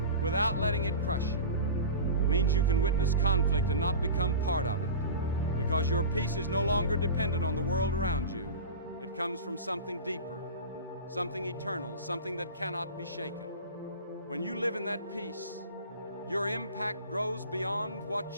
without letting it crush you. It means you can witness conflict and not become part of it, because your peace is no longer dependent on the world around you. It comes from something deeper, something eternal, something that cannot be shaken. When you live in that peace, your impact grows beyond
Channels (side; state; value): both; inverted; correlation -0.32